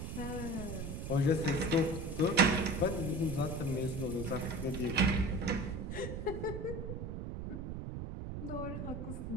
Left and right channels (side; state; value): right; noise; rumble, 5 dB below the sound